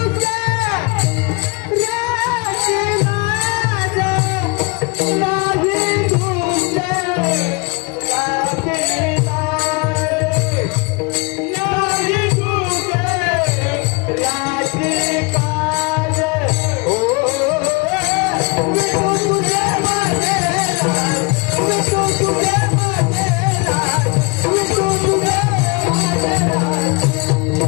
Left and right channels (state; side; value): quieter; right; 28.9 dB